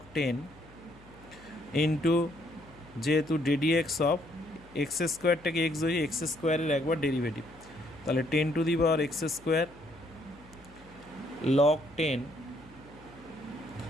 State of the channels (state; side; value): noise; left; hum, 24 dB below the sound